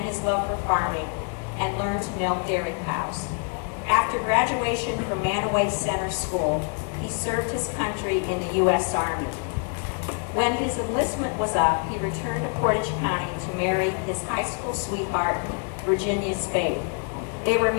his love for farming and learned to milk dairy cows. After graduation from Manaway Center School, he served his country in the U.S. Army. When his enlistment was up, he returned to Portage County to marry his high school sweetheart, Virginia Spade. They were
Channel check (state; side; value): quieter; right; 37.4 dB